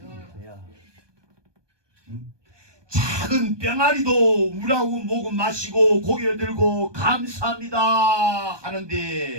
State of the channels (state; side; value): late; left; 1.2 ms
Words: 야. 작은 병아리도 물하고 목은 마시고 고개를 들고 감사합니다